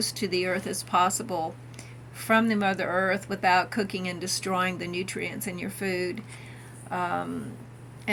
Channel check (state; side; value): identical; both; correlation 1.00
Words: to the earth as possible from the Mother Earth without cooking and destroying the nutrients in your food. And